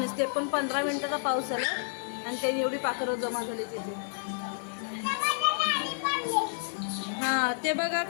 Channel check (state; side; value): silent; right; 58 dB below the other